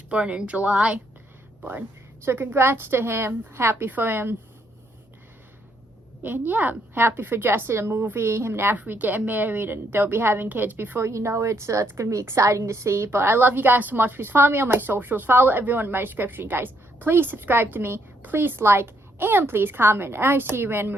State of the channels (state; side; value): normal; both; correlation 0.73